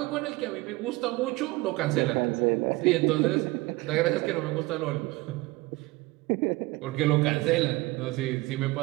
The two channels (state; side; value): quieter; left; 21.6 dB